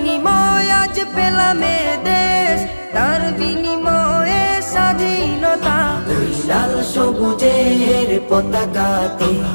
আজ পেলাম এ দেশ, তার বিনিময়ে স্বাধীনতা। ওই লাল সবুজের পতাকাতে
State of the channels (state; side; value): inverted; both; correlation -1.00